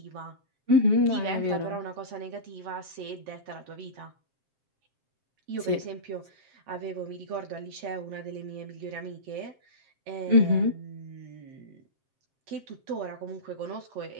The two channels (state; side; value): late; left; 7.5 ms